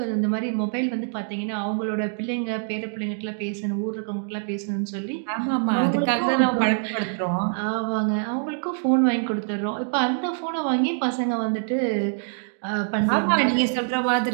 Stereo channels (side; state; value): left; silent; digital silence